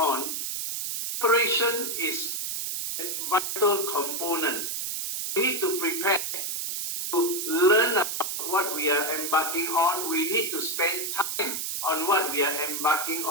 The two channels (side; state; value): right; noise; hiss, 3 dB below the sound